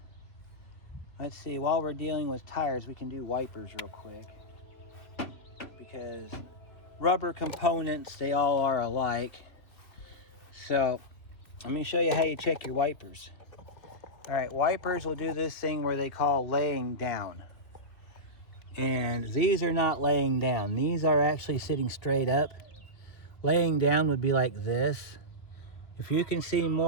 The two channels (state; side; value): late; right; 2.4 ms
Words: see, while we're dealing with tires, we can do wipers real quick, because rubber components, they all are alike. So let me show you how you check your wipers. All right, wipers will do this thing where they call laying down. And these are not laying down. These are actually sitting straight up. Laying down would be like this. If you can see